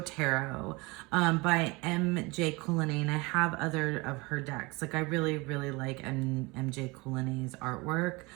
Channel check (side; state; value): left; quieter; 25.0 dB